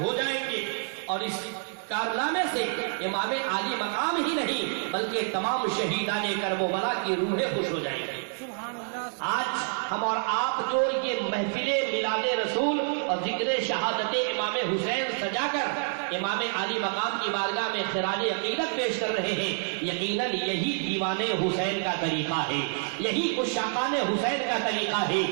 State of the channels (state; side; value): silent; left; 59 dB below the other